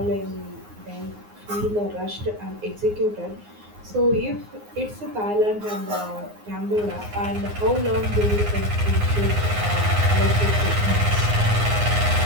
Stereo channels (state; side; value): late; left; 9.6 ms